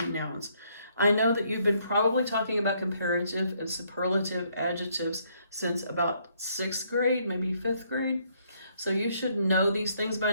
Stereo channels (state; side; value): inverted; both; correlation -0.70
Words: nouns. I know that you've been probably talking about comparative and superlative adjectives since about 6th grade, maybe 5th grade. So you should know these things by